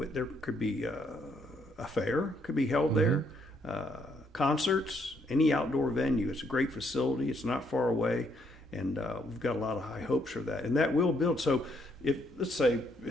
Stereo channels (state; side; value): normal; both; correlation 0.71